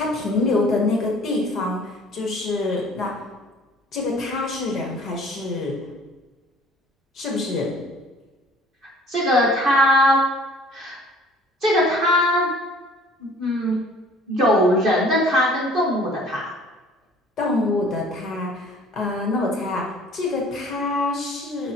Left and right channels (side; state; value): both; normal; correlation 0.52